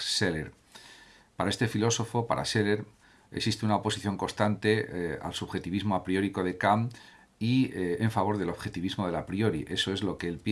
Scheler. Para este filósofo, para Scheler, existe una oposición constante al subjetivismo a priórico de Kant y en favor del objetivismo del a priori. Eso es lo que él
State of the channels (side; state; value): both; identical; correlation 1.00